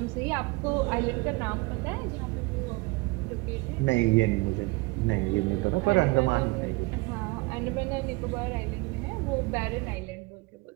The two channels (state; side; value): quieter; left; 24.3 dB